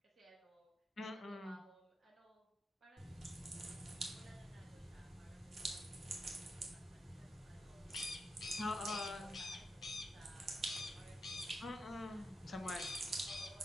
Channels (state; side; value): normal; both; correlation 0.86